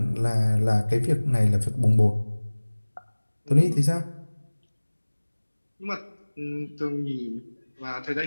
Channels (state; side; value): inverted; both; correlation -1.00